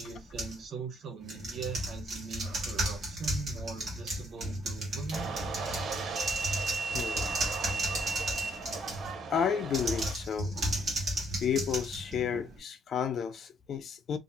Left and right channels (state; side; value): normal; both; correlation 0.68